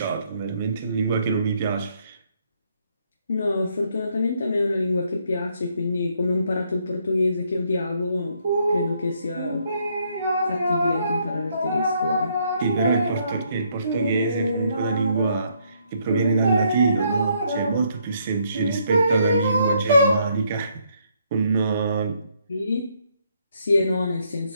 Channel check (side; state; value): both; inverted; correlation -0.71